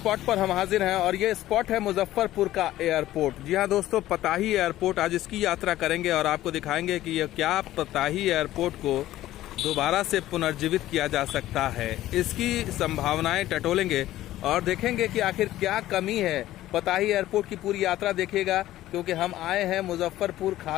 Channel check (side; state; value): right; quieter; 14.6 dB